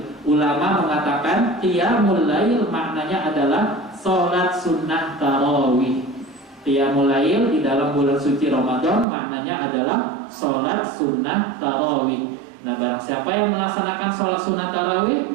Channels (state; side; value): drops out; left; at 9.1 s